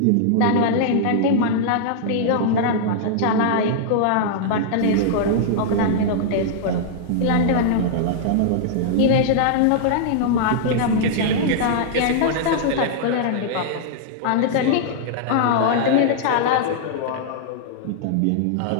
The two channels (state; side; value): different; both; correlation -0.01